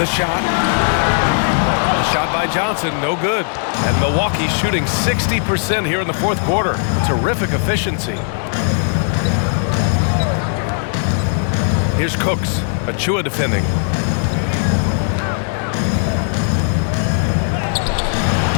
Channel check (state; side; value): silent; right; digital silence